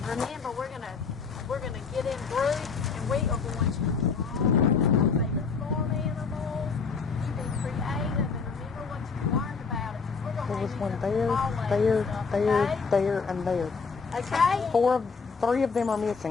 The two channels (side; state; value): right; quieter; 5.1 dB